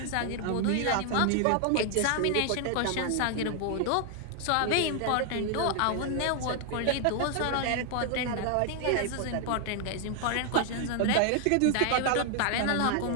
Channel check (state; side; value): different; both; correlation 0.00